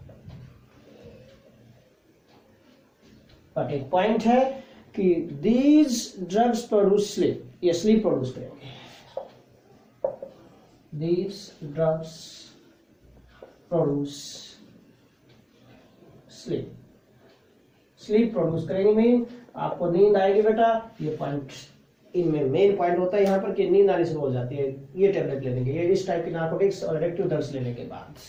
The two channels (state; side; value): identical; both; correlation 1.00